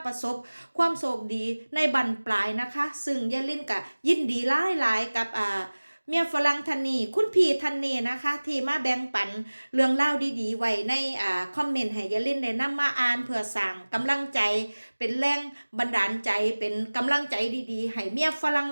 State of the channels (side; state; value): both; inverted; correlation -1.00